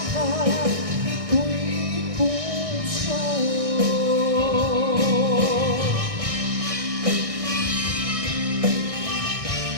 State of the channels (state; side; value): late; left; 1.6 ms